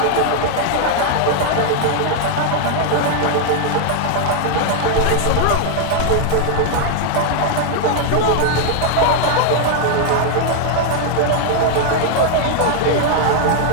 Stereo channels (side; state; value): both; different; correlation 0.00